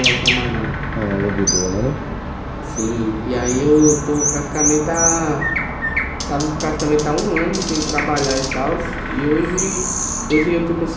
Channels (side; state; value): both; identical; correlation 1.00